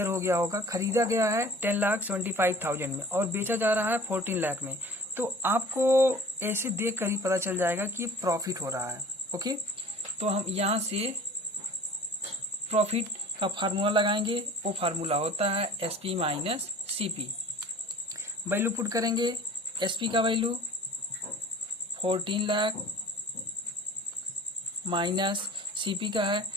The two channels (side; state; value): both; normal; correlation 0.44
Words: हो गया होगा। खरीदा गया है 10,75,000 में और बेचा जा रहा है 14 लाख में, तो आपको ऐसे देख कर ही पता चल जाएगा कि ये प्रॉफिट हो रहा है। ओके, तो हम यहाँ से प्रॉफिट का फार्मूला लगाएंगे। वो फार्मूला होता है SP minus CP. Value put करेंगे। एसपी का वैल्यू 14 लाख माइनस सीपी का है